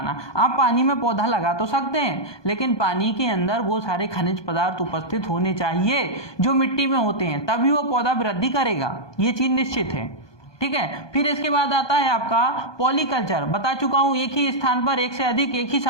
आप पानी में पौधा लगा तो सकते हैं, लेकिन पानी के अंदर वो सारे खनिज पदार्थ उपस्थित होने चाहिए जो मिट्टी में होते हैं, तभी वो पौधा वृद्धि करेगा, ये चीज निश्चित है। ठीक है, फिर इसके बाद आता है आपका पॉलीकल्चर। बता चुका हूं, एक ही स्थान पर एक से अधिक, एक ही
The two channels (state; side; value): late; right; 1.2 ms